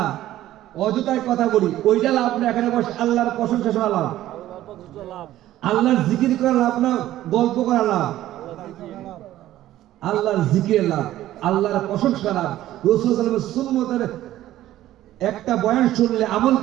অযথায় কথা বলি, ওইটা লাভ না। এখানে বসে আল্লাহর প্রশংসা শোনা লাভ, আল্লাহর জিকির করা লাভ না, গল্প করা লাভ। আল্লাহর জিকির লাভ, আল্লাহর প্রশংসা লাভ। রাসূল সাল্লাল্লাহু আলাইহি ওয়াসাল্লামের সুন্নতের একটা বয়ান শুনলে আমল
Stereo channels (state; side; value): quieter; left; 14.0 dB